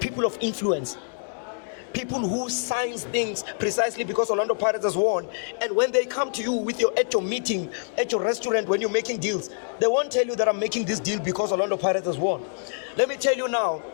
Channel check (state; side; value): silent; right; 61 dB below the other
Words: of influence. People who signs things precisely because Orlando Pirates has won. And when they come to you at your meeting, at your restaurant, when you're making deals, they won't tell you that I'm making this deal because Orlando Pirates has won. Let me tell you now,